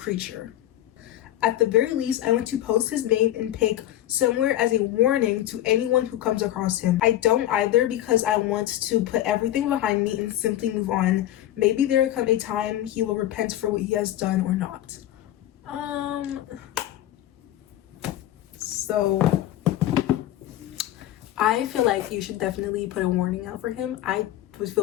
At the very least, I want to post his name and pic somewhere as a warning to anyone who comes across him. I don't either, because I want to put everything behind me and simply move on. Maybe there will come a time he will repent for what he has done or not. So I feel like you should definitely put a warning out for him. I would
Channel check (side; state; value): right; quieter; 13.3 dB